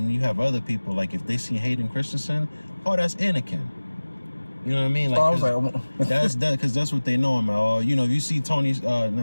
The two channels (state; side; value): inverted; both; correlation -1.00